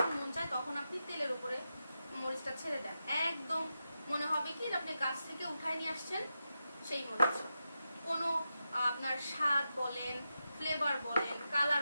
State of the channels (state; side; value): inverted; both; correlation -0.89